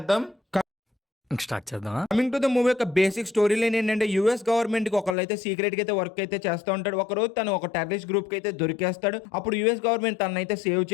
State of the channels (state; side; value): drops out; right; at 5.2 s